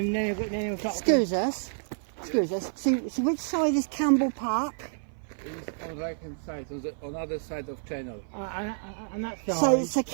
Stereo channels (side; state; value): left; silent; 55 dB below the other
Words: then he'll start. Excuse us. So which side is Campbell Park? It's on right hand side, on the other side of channel. And that side. So